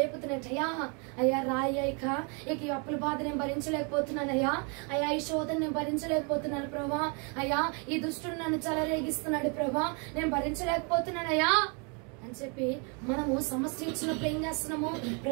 అయ్యా రాయ్యా, ఇక ఈ అప్పుల బాధ నేను భరించలేకపోతున్నానయ్యా, అయ్యా ఈ శోధన నేను భరించలేకపోతున్నాను ప్రభా, అయ్యా ఈ దుష్టుడు నన్ను చెలరేగిస్తున్నాడు ప్రభా, నేను భరించలేకపోతున్నానయ్యా అని చెప్పి మనము సమస్య ఇచ్చినప్పుడు ఏం చేస్తున్నాము?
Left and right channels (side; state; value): left; quieter; 35.3 dB